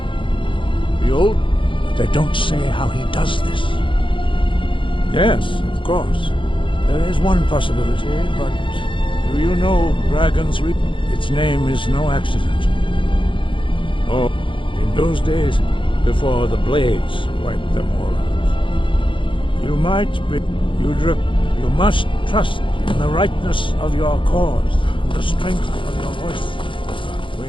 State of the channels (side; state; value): right; late; 0.25 ms